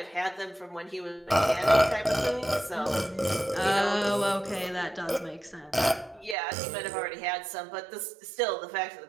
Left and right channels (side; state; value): left; drops out; at 6.4 s